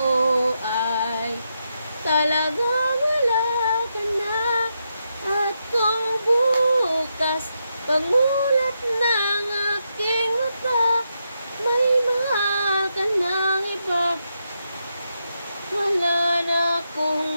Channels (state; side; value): inverted; both; correlation -0.83